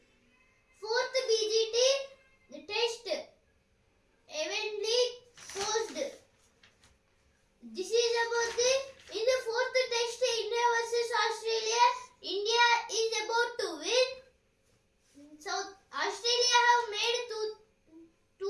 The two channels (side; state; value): both; identical; correlation 1.00